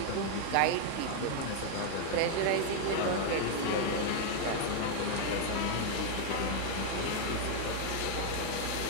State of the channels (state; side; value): different; both; correlation 0.00